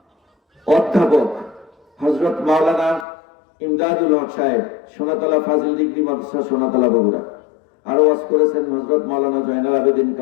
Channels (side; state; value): right; drops out; at 3.1 s